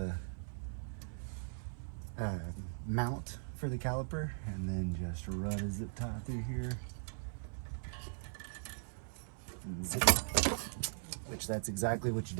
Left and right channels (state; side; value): silent; left; 52 dB below the other